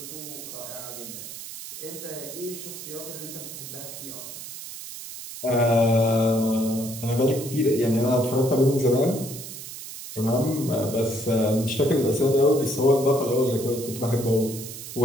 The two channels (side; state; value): right; noise; hiss, 11 dB below the sound